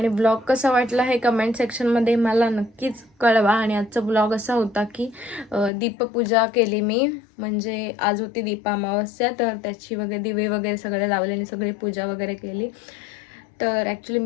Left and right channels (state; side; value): drops out; right; at 5.7 s